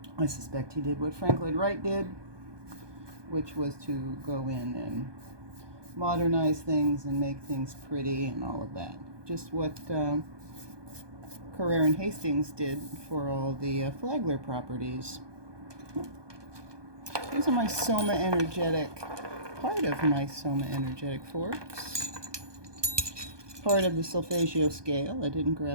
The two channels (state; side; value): late; left; 1.2 ms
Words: I suspect he did what Frank Lloyd Wright did, which was to go in and modernize things and make things pretty and all of that. Just what Carrere and Hastings did for all the Flagler properties. These are my Soma Energetic, part of my Soma Energetic forks. Part of the Solfeggio scale. I didn't